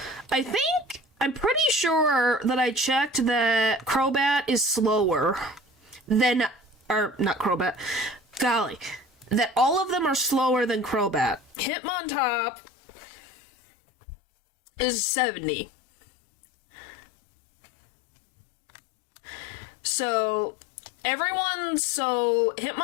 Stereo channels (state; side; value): drops out; right; at 11.6 s